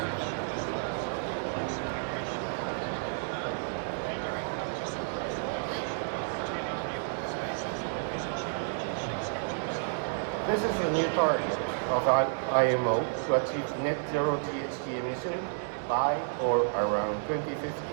This is a new target of IMO to achieve net zero GHG emission by or around 2050,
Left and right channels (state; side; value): silent; left; 57 dB below the other